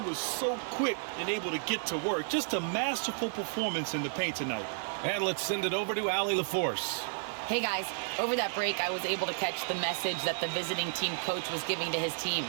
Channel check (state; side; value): silent; left; digital silence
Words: was so quick and able to get to work. Just a masterful performance in the paint tonight. And let's send it over to Allie LaForce. Hey guys, over that break, I was able to catch the message that the visiting team coach was giving to his team.